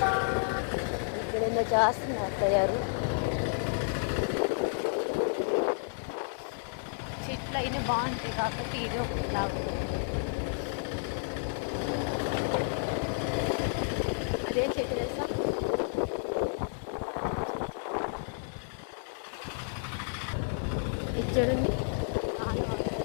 ఇక్కడ చేస్తున్నారు తయారు చెట్లు అయినా బాగుంటాయి కాబట్టి ఇది ఒకటి లాభం. అదేం చెట్టు తెలుసా? ఇది చూడండి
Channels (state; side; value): silent; right; digital silence